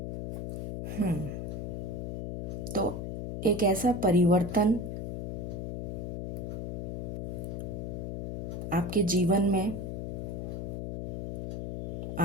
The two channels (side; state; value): left; noise; hum, 4 dB below the sound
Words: तो एक ऐसा परिवर्तन आपके जीवन में